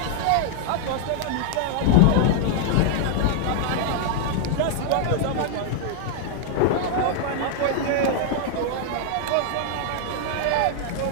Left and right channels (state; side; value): different; both; correlation 0.00